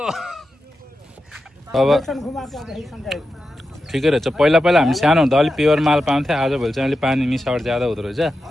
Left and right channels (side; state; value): both; normal; correlation 0.90